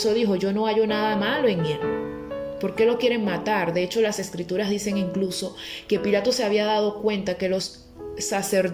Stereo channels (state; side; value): identical; both; correlation 1.00